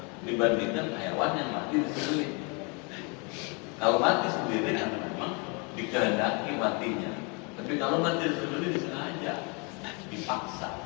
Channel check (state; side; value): quieter; right; 32.8 dB